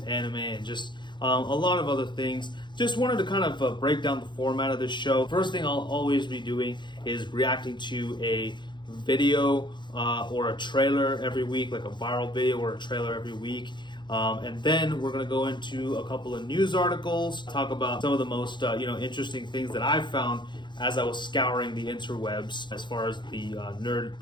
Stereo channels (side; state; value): right; late; 0.22 ms